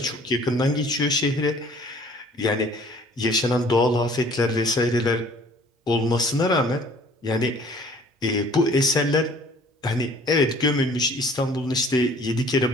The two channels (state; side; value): normal; both; correlation 0.53